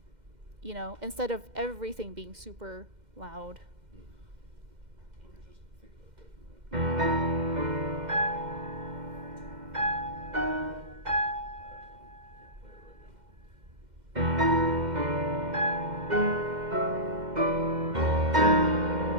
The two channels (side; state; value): left; late; 2.1 ms